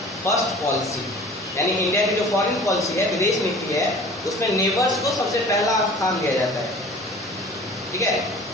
फर्स्ट पॉलिसी, यानी इंडिया की जो फॉरेन पॉलिसी है, विदेश नीति है, उसमें नेबर्स को सबसे पहला स्थान दिया जाता है। ठीक है,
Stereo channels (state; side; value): normal; both; correlation 0.44